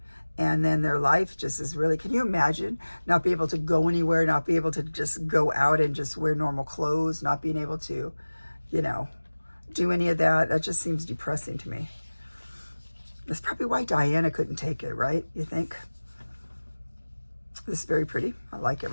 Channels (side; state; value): both; inverted; correlation -1.00